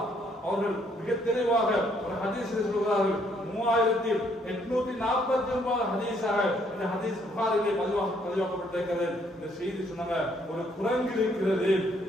அவர்கள் மிக தெளிவாக ஒரு ஹதீஸில் சொல்கிறார்கள். 3849 ஹதீஸாக இந்த ஹதீஸ் புகாரிலே பதிவாக்கப்பட்டிருக்கிறது. இந்த செய்தி சொன்னாங்க, ஒரு குரங்கு இருக்கிறது.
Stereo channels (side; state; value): both; normal; correlation 0.68